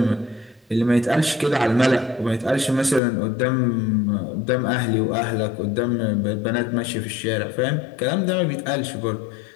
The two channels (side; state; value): right; drops out; at 3.0 s